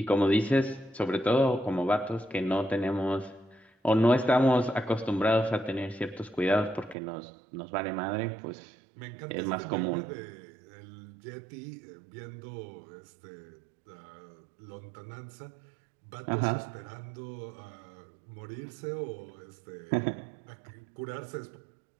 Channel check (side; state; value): left; drops out; at 7.0 s